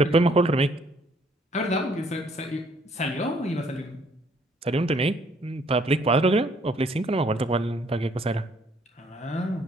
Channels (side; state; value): both; normal; correlation 0.64